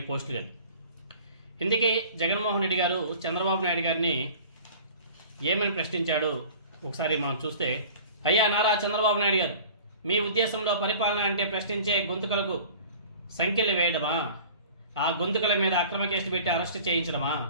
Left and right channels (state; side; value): inverted; both; correlation -0.43